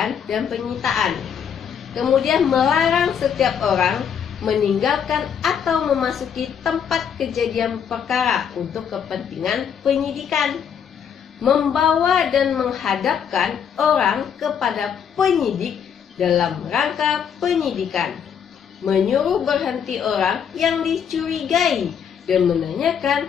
dan penyitaan. Kemudian melarang setiap orang meninggalkan atau memasuki tempat kejadian perkara untuk kepentingan penyidikan. Membawa dan menghadapkan orang kepada penyidik dalam rangka penyidikan, menyuruh berhenti orang yang dicurigai dan menanyakan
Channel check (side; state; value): right; quieter; 7.8 dB